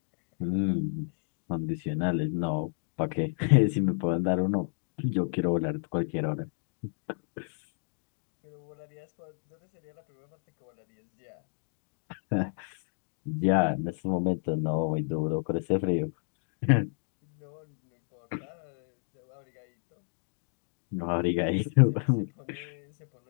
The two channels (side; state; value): right; silent; digital silence